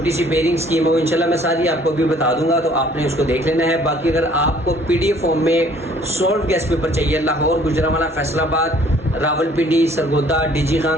सी पेयरिंग स्कीम है वो इंशाल्लाह मैं सारी आपको भी बता दूंगा, तो आपने उसको देख लेना है। बाकी अगर आपको PDF फॉर्म में सॉल्व गेस्ट पेपर चाहिए, लाहौर, गुजरांवाला, फैसलाबाद, रावलपिंडी, सरगोदा, डीजी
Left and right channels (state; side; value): normal; both; correlation 0.57